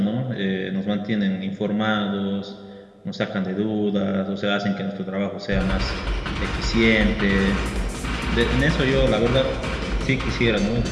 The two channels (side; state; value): both; identical; correlation 1.00